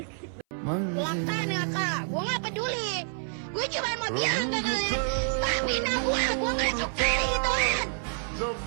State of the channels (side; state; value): left; silent; 57 dB below the other